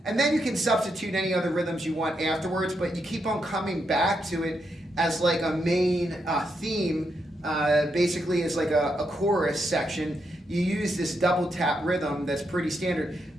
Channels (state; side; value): normal; both; correlation 0.81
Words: And then you can substitute any other rhythms you want afterwards, but you keep on coming back to it as like a main theme, basically as like a chorus section. You use this double tap rhythm that's pretty standard.